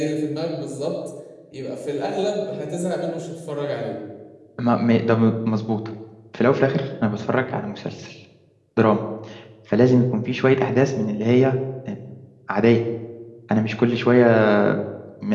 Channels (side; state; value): both; identical; correlation 1.00